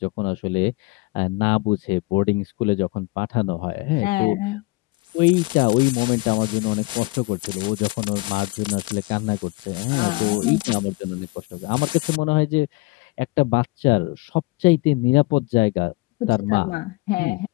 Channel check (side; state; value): right; quieter; 23.7 dB